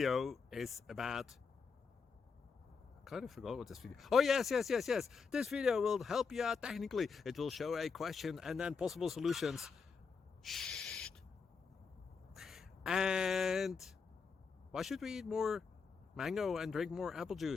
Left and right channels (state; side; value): quieter; right; 5.4 dB